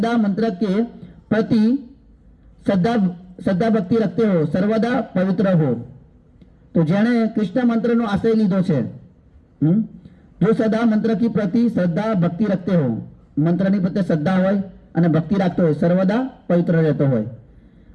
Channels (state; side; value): identical; both; correlation 1.00